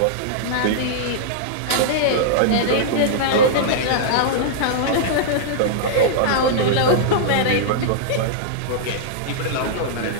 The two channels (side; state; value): both; different; correlation -0.02